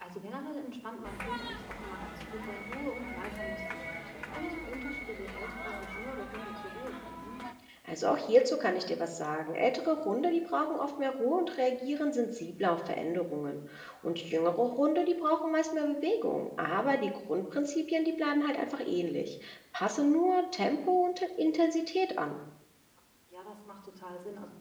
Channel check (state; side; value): identical; both; correlation 1.00